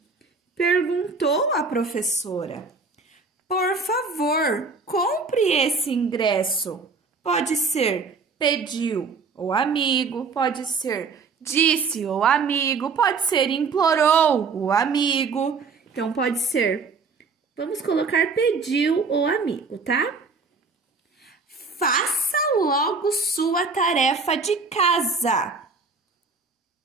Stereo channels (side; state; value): left; quieter; 4.6 dB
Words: Perguntou a professora. Por favor, compre esse ingresso. Pode ser pediu ou amigo, pode ser disse o amigo, pode ser implorou o amigo. Então, pode ser, vamos colocar pediu o amigo, tá? Faça logo sua tarefa de casa.